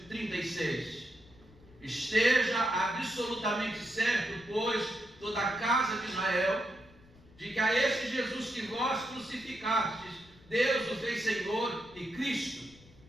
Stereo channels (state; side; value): noise; left; rumble, 25 dB below the sound